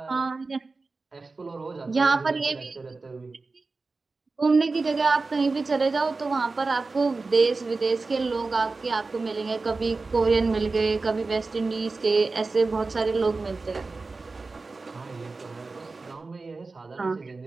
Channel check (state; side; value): quieter; left; 3.8 dB